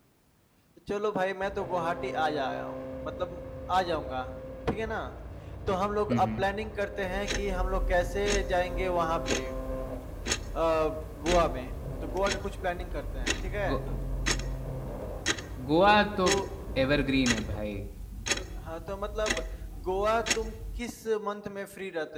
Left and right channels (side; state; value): both; identical; correlation 1.00